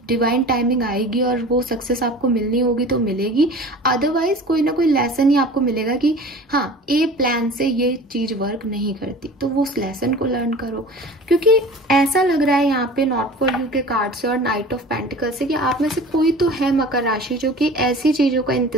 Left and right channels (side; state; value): both; normal; correlation 0.40